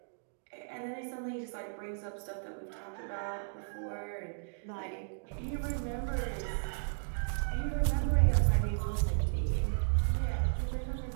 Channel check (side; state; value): left; silent; digital silence